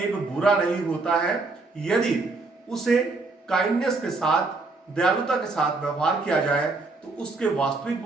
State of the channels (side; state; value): left; quieter; 3.6 dB